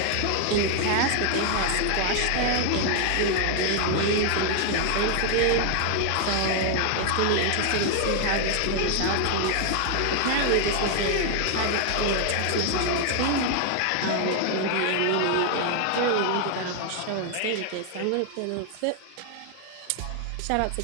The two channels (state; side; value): different; both; correlation 0.00